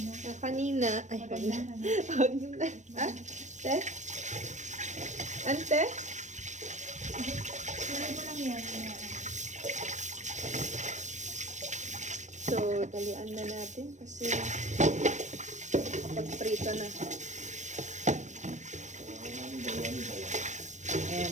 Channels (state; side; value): late; left; 0.35 ms